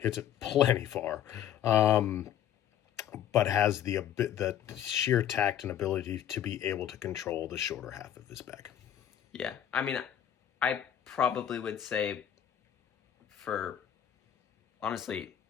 it plenty far, but has the sheer tact and ability to be able to control the shorter half of his bag. Yeah, I mean, I probably would say for, honestly,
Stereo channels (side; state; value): right; quieter; 10.3 dB